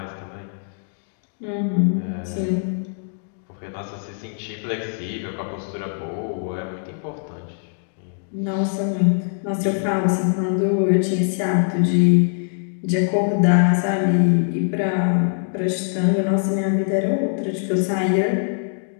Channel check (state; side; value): silent; right; digital silence